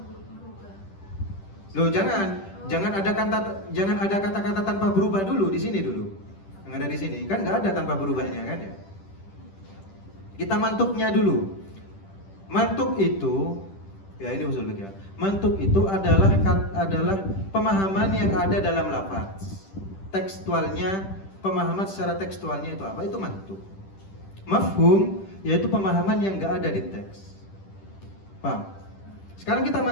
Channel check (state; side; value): late; right; 10 ms